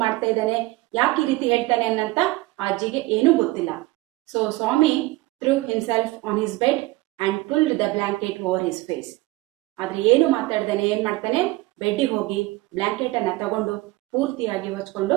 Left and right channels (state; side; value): quieter; left; 20.0 dB